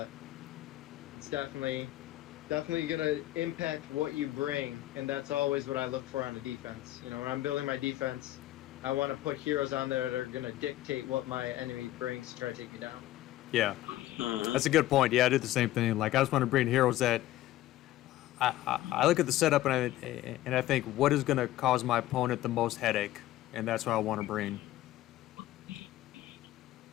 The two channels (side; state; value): right; quieter; 15.0 dB